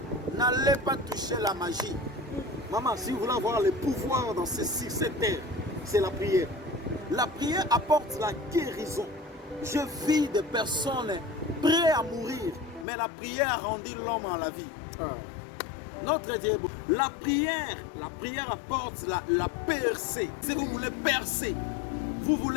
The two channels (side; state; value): right; drops out; at 12.9 s